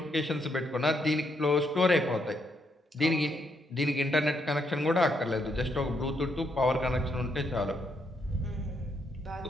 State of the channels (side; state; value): both; normal; correlation 0.76